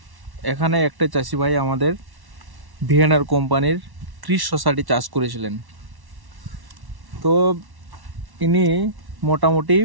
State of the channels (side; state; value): left; late; 1.1 ms